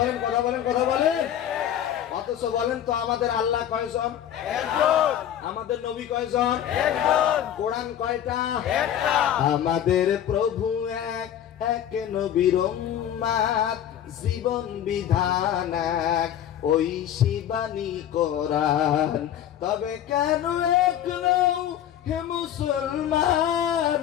কথা বলেন, কথা বলেন। অথচ বলেন তো আমাদের আল্লাহ কয়জন? একজন। আমাদের নবী কয়জন? একজন। কোরআন কয়টা? একটা। আমাদের প্রভু এক, এক নবীর উম্মত, জীবন বিধান এক, ওই শিবানী কোরআন। তবে কেন এক নও হে মুসলমান,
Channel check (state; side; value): quieter; right; 10.5 dB